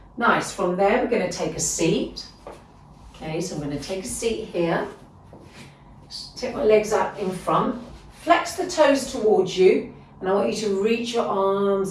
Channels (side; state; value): both; identical; correlation 1.00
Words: Nice. From there, we're going to take a seat. Okay, so I'm going to take a seat here. Take my legs out in front. Flex the toes towards you, and I want you to reach your